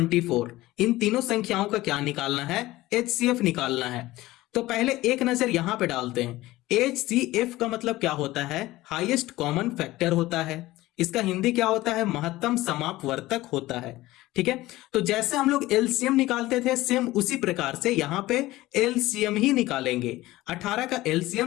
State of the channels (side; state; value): right; quieter; 17.7 dB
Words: इन तीनों संख्याओं का क्या निकालना है, HCF निकालना है। तो पहले एक नजर यहां पे डालते हैं। HCF का मतलब क्या होता है? हाईएस्ट कॉमन फैक्टर होता है। इसका हिंदी क्या होता है? महत्तम समापवर्तक होता है। ठीक है, तो जैसे हम लोग एलसीएम निकालते थे, सेम उसी प्रकार से यहां पे एलसीएम ही निकालेंगे। 18 का